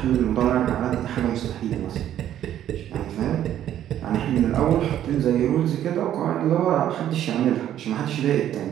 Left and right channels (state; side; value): quieter; left; 11.3 dB